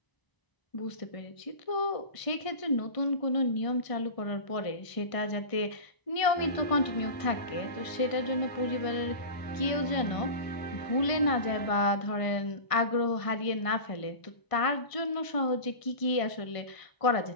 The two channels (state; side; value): late; right; 1.5 ms